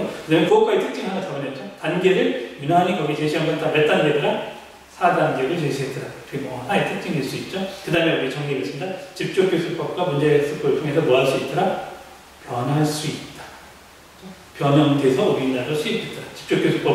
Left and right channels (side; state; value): both; identical; correlation 1.00